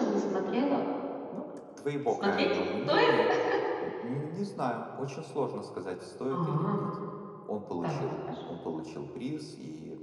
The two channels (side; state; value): both; identical; correlation 1.00